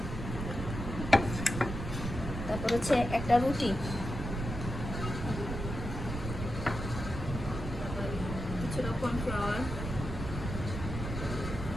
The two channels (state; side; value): noise; right; rumble, 5 dB below the sound